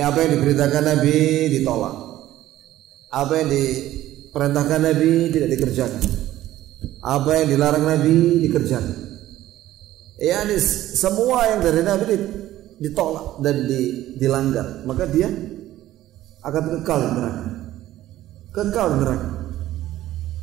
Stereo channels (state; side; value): quieter; left; 14.3 dB